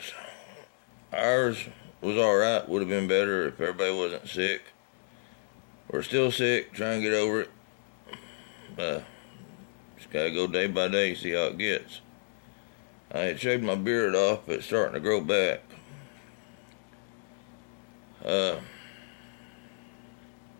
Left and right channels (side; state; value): right; silent; digital silence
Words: Ours was alright, would have been better if everybody wasn't sick. We're still sick, trying to get over it. Just gotta go day by day, see how it gets. I had shaved my beard off, but it's starting to grow back.